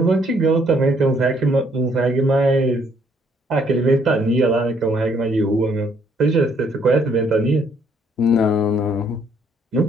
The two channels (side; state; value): both; normal; correlation 0.67